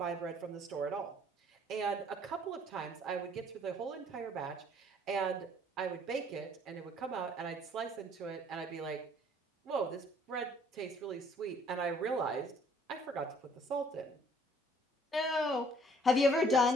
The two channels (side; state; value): both; normal; correlation 0.60